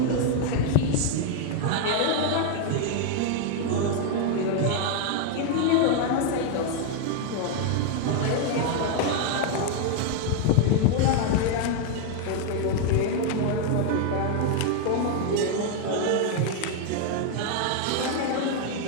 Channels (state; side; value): different; both; correlation 0.00